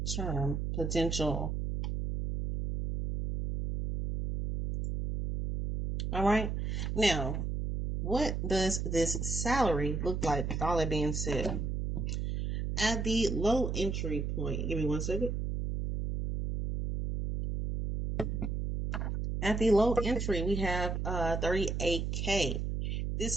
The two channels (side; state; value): right; noise; hum, 2 dB below the sound